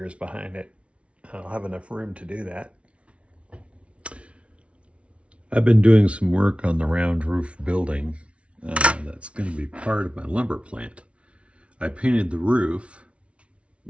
behind it, I'll have enough room to do that. I've been doing some work on the round roof building that's going to be part of my lumber plant. I painted the roof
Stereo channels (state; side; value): late; left; 0.061 ms